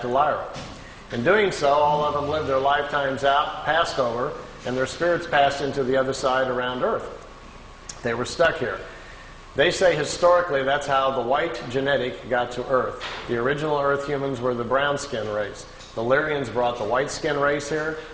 to Lyra. In doing so, all of them lived their lifetimes out, passed over, and their spirits passed into the other side around Earth. They were stuck here. They say historically that's how the white genetic got to Earth. The original Earth humans were the brown skin race. The Lyrians brought the white skin race here.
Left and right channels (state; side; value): identical; both; correlation 1.00